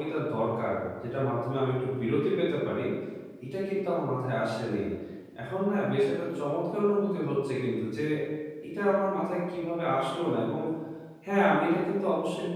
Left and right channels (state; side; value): identical; both; correlation 1.00